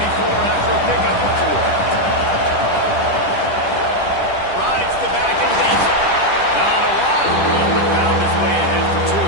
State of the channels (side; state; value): right; late; 10 ms